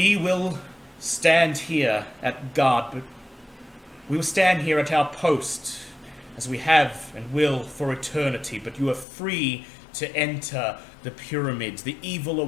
will stand here at guard, but we will stand here at our post, as we have and will for eternity, but you are free to enter the pyramids. The evil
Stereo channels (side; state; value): right; drops out; at 9.1 s